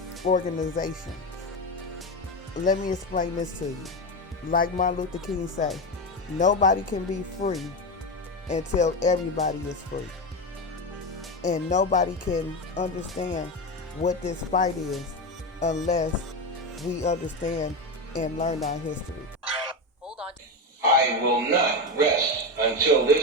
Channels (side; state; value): both; normal; correlation 0.16